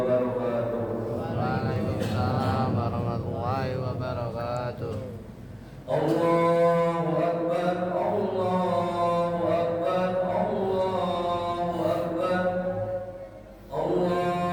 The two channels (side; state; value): both; identical; correlation 1.00